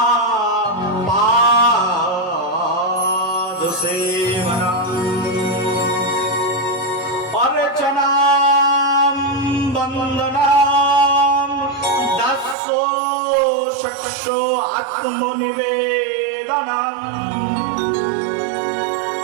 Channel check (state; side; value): drops out; left; at 12.6 s